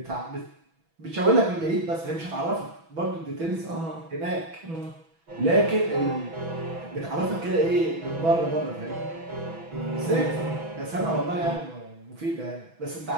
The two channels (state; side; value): late; left; 6.1 ms